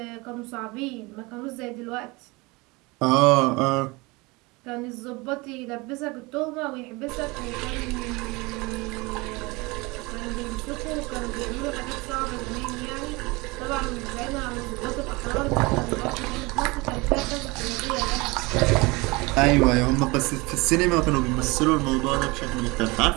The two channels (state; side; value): quieter; left; 24.7 dB